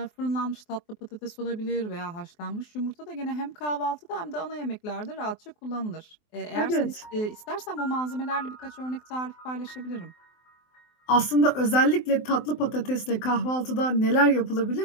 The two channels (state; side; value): late; right; 23 ms